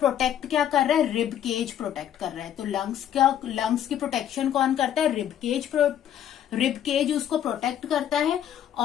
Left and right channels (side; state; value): right; quieter; 10.3 dB